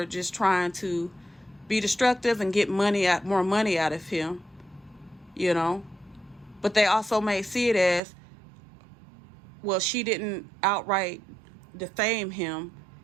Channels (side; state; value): left; drops out; at 8.0 s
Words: just trying to be destructive and get more money out of him, you know. But they also may see it as, well, she didn't outright defame him